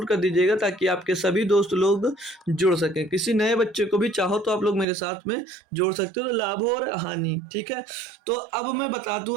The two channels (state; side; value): drops out; left; at 4.9 s